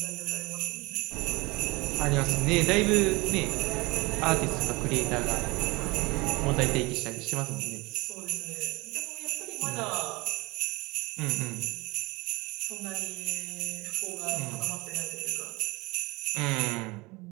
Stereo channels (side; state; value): left; quieter; 23.8 dB